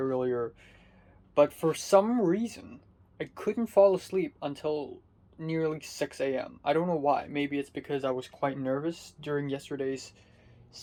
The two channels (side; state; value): both; identical; correlation 1.00